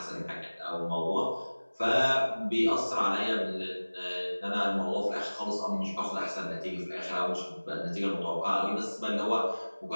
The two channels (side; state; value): both; inverted; correlation -1.00